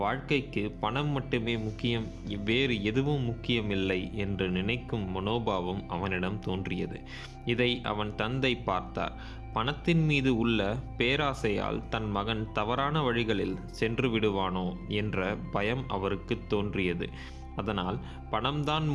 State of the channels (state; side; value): identical; both; correlation 1.00